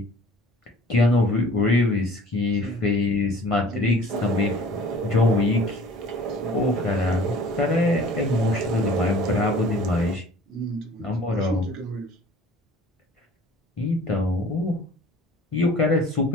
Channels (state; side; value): normal; both; correlation 0.48